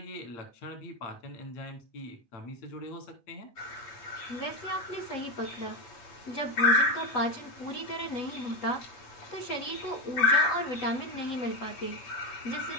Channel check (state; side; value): late; right; 8.1 ms